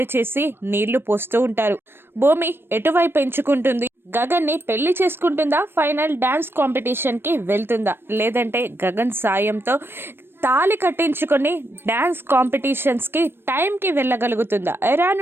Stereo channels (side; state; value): left; late; 0.11 ms